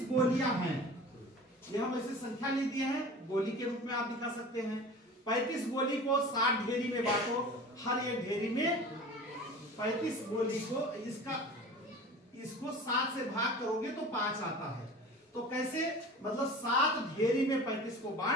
गोलियां हैं, ये हम ऐसे संख्या ले दिए हैं, गोली के रूप में आप दिखा सकते हैं। 35 गोली को 60 ढेरी में बांटो, हर एक ढेरी में 35 गोली को इसको 7 से भाग करोगे तो 5 आता है। तो कैसे, मतलब 7 ढेरी में 35 को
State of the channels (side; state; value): both; normal; correlation 0.38